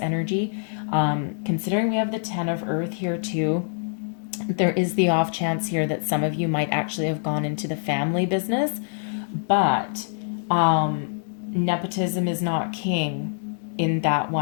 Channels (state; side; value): silent; right; digital silence